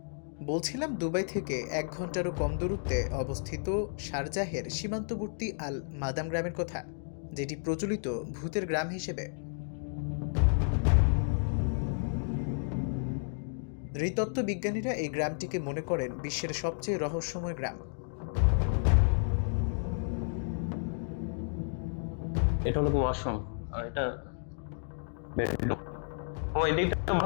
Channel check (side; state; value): right; silent; digital silence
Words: বলছিলাম, দুবাই থেকে 1 ঘন্টারও কম দূরত্বে অবস্থিত শারজাহের সীমান্তবর্তী আল মাদাম গ্রামের কথা, যেটি প্রচলিত ভূতের গ্রাম হিসেবে। নৃতত্ত্ব বিজ্ঞানীরা এই গ্রামটিকে মনে করেন বিশ্বের সবচেয়ে রহস্যময় গ্রাম। এটা হলো ওয়াশরুম আর এটা বেডরুম। ও এদিকটা